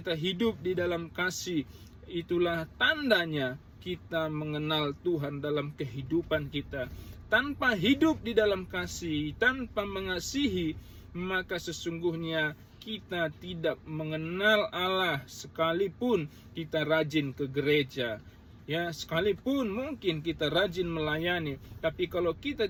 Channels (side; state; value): both; identical; correlation 1.00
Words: hidup di dalam kasih. Itulah tandanya kita mengenal Tuhan dalam kehidupan kita. Tanpa hidup di dalam kasih, tanpa mengasihi, maka sesungguhnya kita tidak mengenal Allah, sekalipun kita rajin ke gereja. Ya, sekalipun mungkin kita rajin melayani, tapi kalau kita